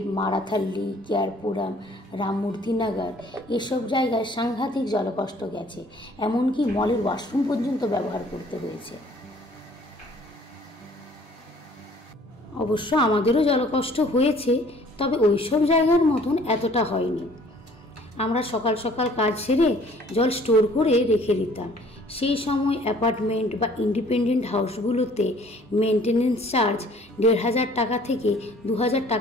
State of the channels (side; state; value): both; normal; correlation 0.55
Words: মারাথাল্লি, কেয়ারপুরাম, রামমূর্তিনগর এসব জায়গায় সাংঘাতিক জলকষ্ট গেছে। এমনকি মলের ওয়াশরুম পর্যন্ত ব্যবহার করতে হয়েছে। অবশ্য আমাদেরও জলকষ্ট হয়েছে, তবে ওইসব জায়গার মতন এতটা হয়নি। আমরা সকাল সকাল কাজ সেরে জল স্টোর করে রেখে দিতাম। সেই সময় অ্যাপার্টমেন্ট বা ইন্ডিপেন্ডেন্ট হাউসগুলোতে মেনটেনেন্স চার্জ 1,500 টাকা থেকে 2,000